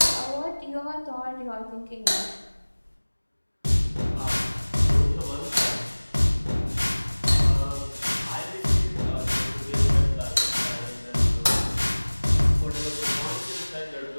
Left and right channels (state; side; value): inverted; both; correlation -1.00